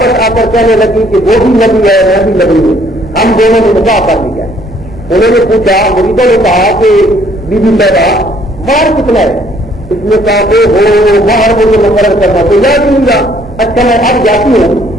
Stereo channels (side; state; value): both; normal; correlation 0.63